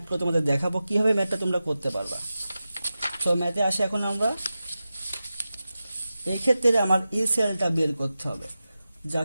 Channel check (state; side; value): inverted; both; correlation -0.93